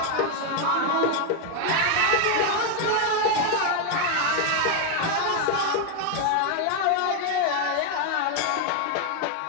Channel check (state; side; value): different; both; correlation 0.01